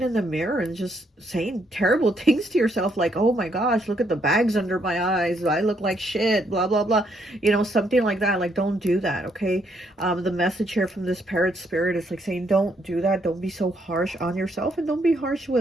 in the mirror and just saying terrible things to yourself, like, oh my gosh, look at the bags under my eyes, I look like shit, blah blah blah, you know, something like that. Like, don't do that, okay? The message here from this parrot spirit is like saying, don't do that, don't be so harsh on yourself, and don't be harsh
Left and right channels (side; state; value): both; normal; correlation 0.73